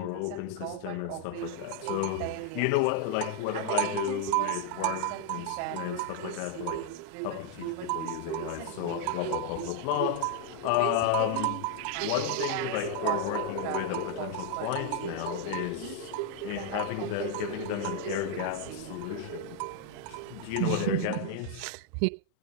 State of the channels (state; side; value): different; both; correlation 0.00